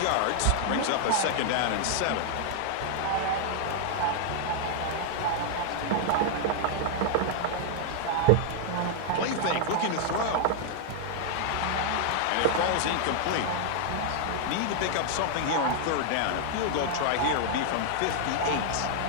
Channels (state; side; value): different; both; correlation -0.01